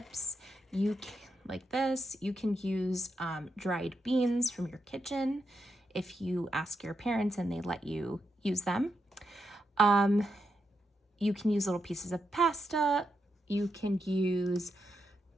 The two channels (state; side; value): normal; both; correlation 0.83